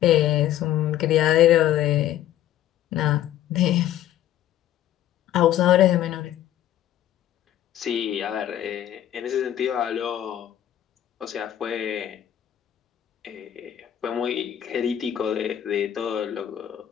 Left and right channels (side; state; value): right; quieter; 11.9 dB